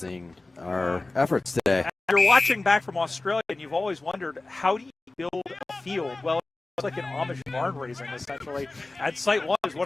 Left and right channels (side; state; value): right; quieter; 3.1 dB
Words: our efforts today. You're watching back from Australia, and you've always wondered, how do you build a field? Well, it's like an Amish barn raising, essentially. And Site 1 is